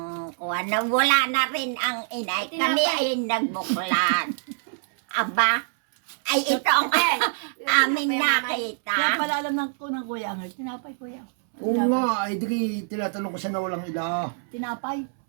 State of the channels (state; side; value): silent; left; 62 dB below the other